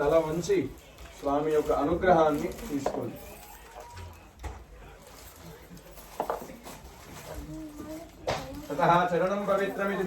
తల వంచి స్వామి యొక్క అనుగ్రహాన్ని తీసుకోండి. ततः चरणं पवित्रमिति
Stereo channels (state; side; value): identical; both; correlation 1.00